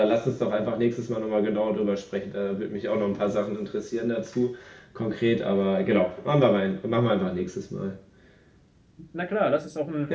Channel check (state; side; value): identical; both; correlation 1.00